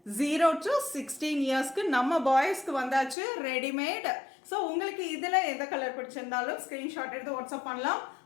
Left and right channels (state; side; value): drops out; right; at 3.2 s